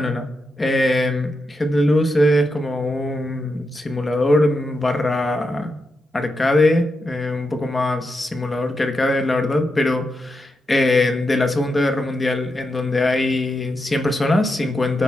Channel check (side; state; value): both; normal; correlation 0.86